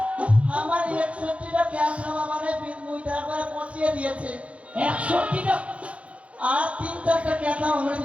আমার 61টা ক্যান্সার আমারে মুদ্রা করে পচিয়ে দিয়েছে। 61টা? আর 3-4টা ক্যাথা আমরা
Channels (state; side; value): late; left; 0.063 ms